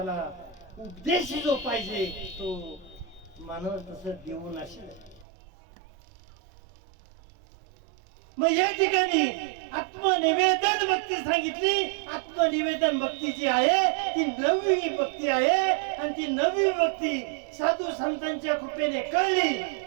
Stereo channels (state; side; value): drops out; left; at 5.2 s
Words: उपदेश जो पाहिजे तो मानव तसं देऊ नसेल. मग या ठिकाणी आत्मनिवेदन भक्ती सांगितली. आत्मनिवेदन भक्ती जी आहे ती 9वी भक्ती आहे, आणि ती 9वी भक्ती साधू संतांच्या कृपेने कळली.